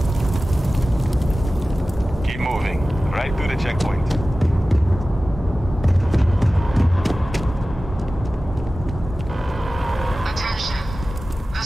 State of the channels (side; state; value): both; normal; correlation 0.96